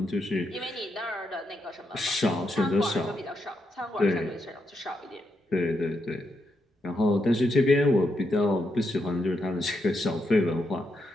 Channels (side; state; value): both; normal; correlation 0.81